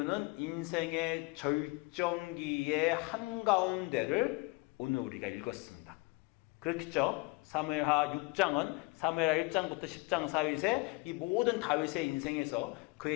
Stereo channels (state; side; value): quieter; right; 26.4 dB